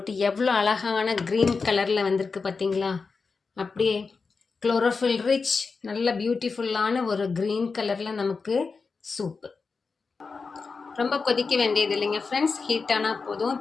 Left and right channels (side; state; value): right; quieter; 4.6 dB